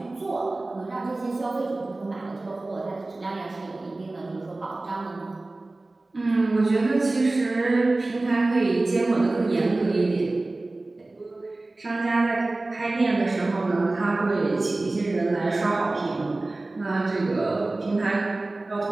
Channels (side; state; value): left; quieter; 3.0 dB